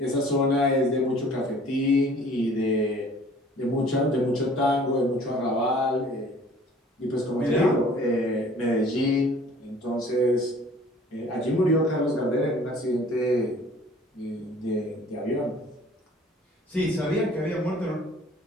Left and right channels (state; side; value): normal; both; correlation 0.51